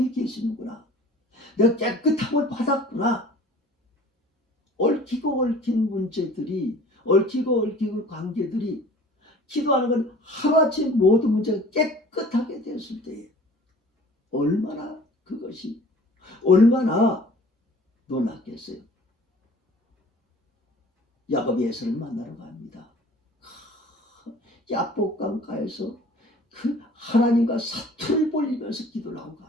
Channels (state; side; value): normal; both; correlation 0.48